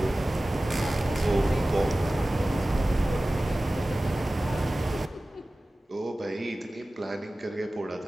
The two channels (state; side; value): normal; both; correlation 0.97